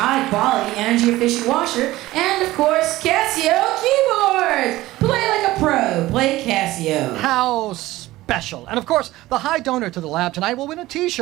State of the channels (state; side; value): quieter; left; 17.3 dB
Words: energy-efficient washer, and, of course, Casio keyboards! Play like a pro. Play Casio. How special. And, of course, the high donor to the lab tonight will win a